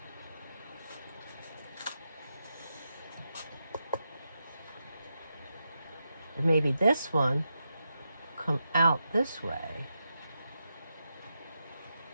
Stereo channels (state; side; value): inverted; both; correlation -0.87